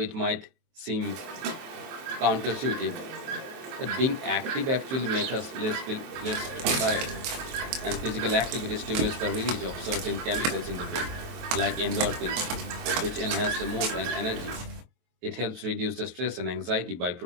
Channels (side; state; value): left; late; 23 ms